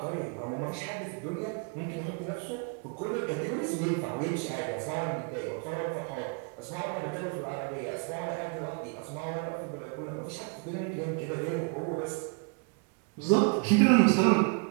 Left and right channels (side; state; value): left; quieter; 34.7 dB